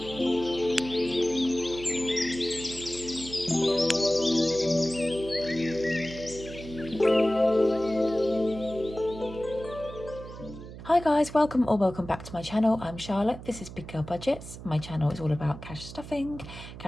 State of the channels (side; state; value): right; noise; hum, 13 dB below the sound